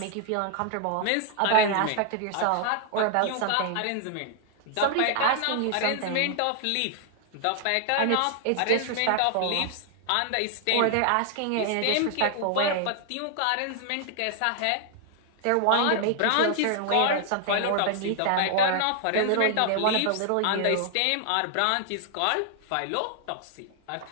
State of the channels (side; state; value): both; different; correlation 0.00